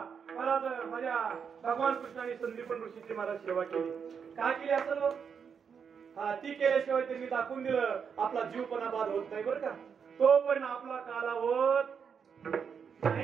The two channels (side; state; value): left; quieter; 6.7 dB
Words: महाराज माझ्या भगवान कृष्णाने संदीपन ऋषीची महाराज सेवा केली काय केली असं ती केल्याशिवाय त्यांनी दाखवून दिलं आपला जीव पण बाद होत नाही बरं का तो पण आपला काला होत